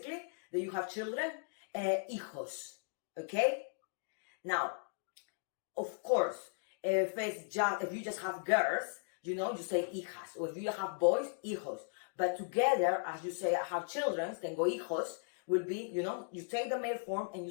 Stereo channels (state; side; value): silent; right; digital silence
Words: that you have children, hijos, okay? Now, of course, if you just have girls, you say hijas. Or if you have boys, hijos. But together, as you say, I have children, then go hijos, will be, you take the male form and you